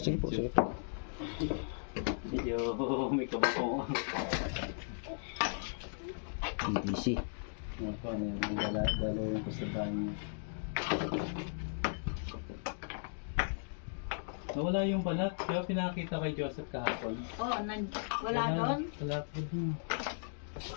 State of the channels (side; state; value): right; silent; digital silence